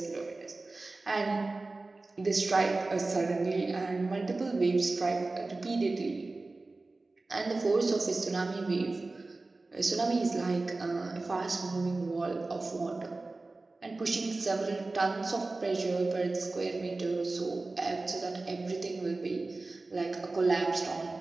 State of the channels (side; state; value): left; quieter; 3.3 dB